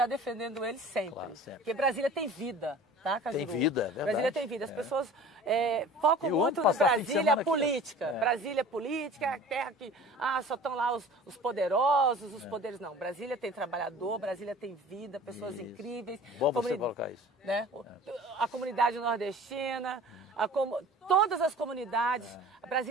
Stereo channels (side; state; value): both; normal; correlation 0.43